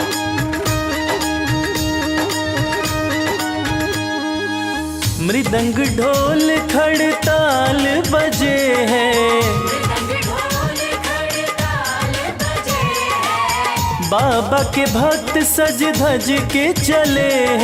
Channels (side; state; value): both; identical; correlation 1.00